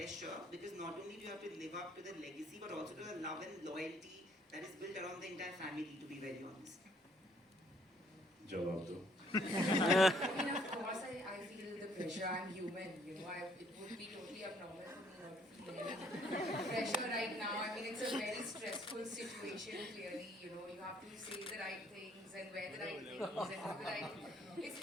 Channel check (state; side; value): normal; both; correlation 0.64